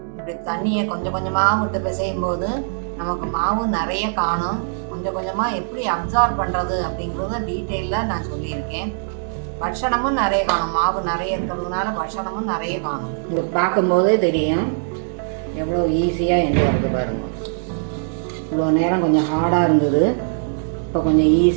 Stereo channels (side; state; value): left; silent; digital silence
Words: இப்படி தண்ணியை கொஞ்சம் கொஞ்சமாக விட்டு பிசையும் போது நமக்கு மாவு நிறைய காணும். கொஞ்சம் கொஞ்சமாக எப்படி அப்சார்ப் பண்ணுறது அப்படிங்கிறத டீட்டெயிலாக நான் சொல்லியிருக்கேன். பட்சணமும் நிறைய காணும், மாவு நிறைய இருக்கிறதுனால பட்சணமும் நிறைய காணும். இது பார்க்கும்போதே தெரியும் எவ்வளோ ஈஸியாக என்று வருது பாருங்க. இவ்வளோ நேரம் கொஞ்சம் ஹார்டாக இருந்தது, இப்போ கொஞ்சம்